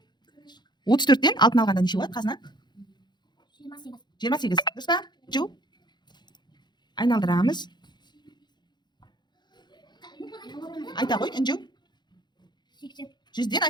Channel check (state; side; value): late; right; 0.21 ms